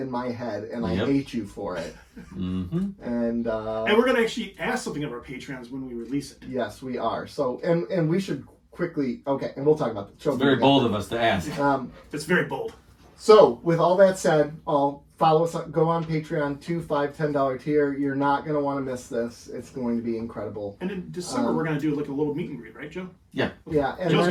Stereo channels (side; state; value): both; identical; correlation 1.00